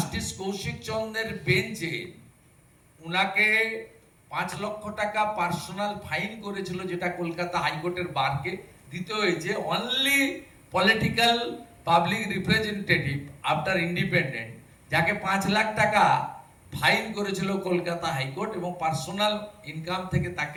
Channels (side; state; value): both; identical; correlation 1.00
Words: কৌশিক চন্দ্রের বেঞ্চে উনাকে 5 লক্ষ টাকা পার্সোনাল ফাইন করেছিল, যেটা কলকাতা হাইকোর্টের বারকে দিতে হয়েছে। Only political public representative after independent, যাকে 5 লাখ টাকা ফাইন করেছিল কলকাতা হাইকোর্ট, এবং পার্সোনাল ইনকাম থেকে